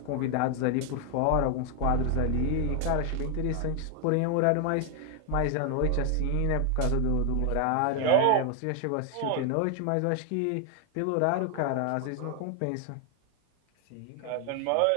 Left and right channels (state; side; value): different; both; correlation 0.00